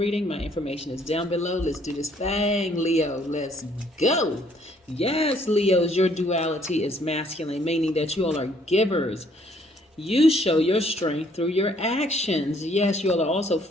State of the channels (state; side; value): normal; both; correlation 0.64